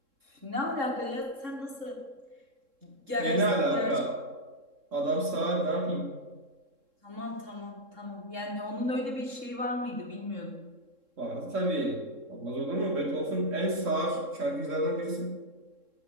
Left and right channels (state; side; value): late; left; 3.7 ms